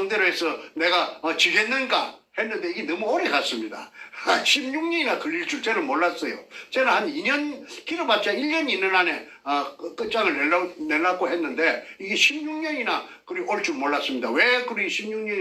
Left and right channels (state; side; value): identical; both; correlation 1.00